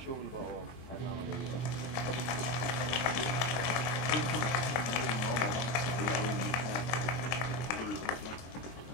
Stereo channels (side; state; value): right; late; 23 ms